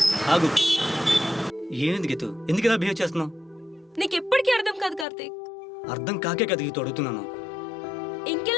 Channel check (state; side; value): drops out; right; at 5.1 s